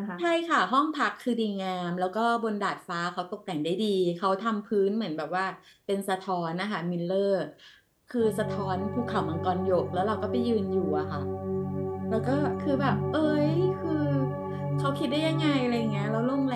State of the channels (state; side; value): identical; both; correlation 1.00